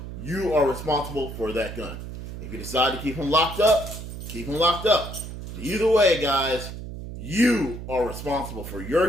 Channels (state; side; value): noise; right; hum, 9 dB below the sound